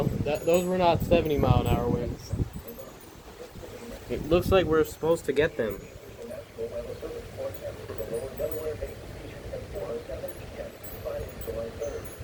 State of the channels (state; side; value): identical; both; correlation 1.00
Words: Those were not 70-mile-an-hour winds. It looks like we're supposed to get them.